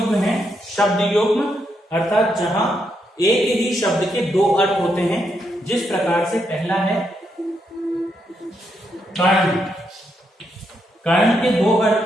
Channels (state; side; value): normal; both; correlation 0.79